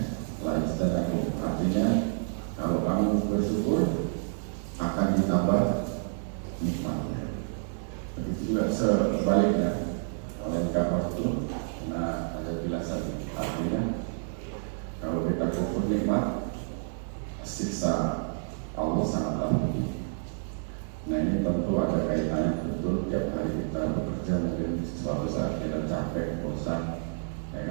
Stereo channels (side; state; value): left; silent; 58 dB below the other